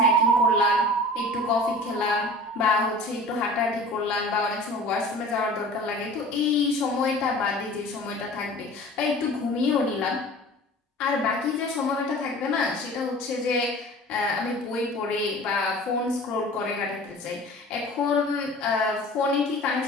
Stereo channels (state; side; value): normal; both; correlation 0.41